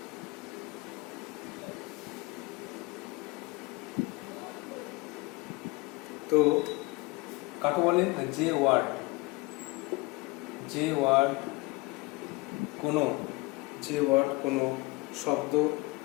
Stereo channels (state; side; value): quieter; right; 24.1 dB